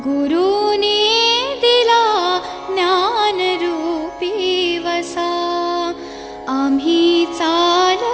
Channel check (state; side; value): identical; both; correlation 1.00